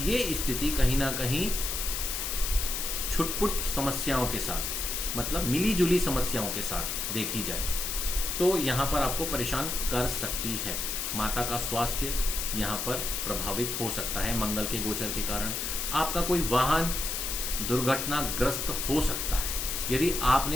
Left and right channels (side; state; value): left; noise; hiss, 2 dB below the sound